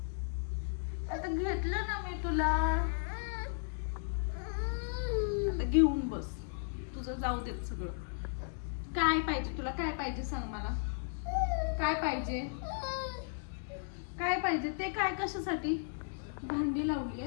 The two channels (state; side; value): silent; right; digital silence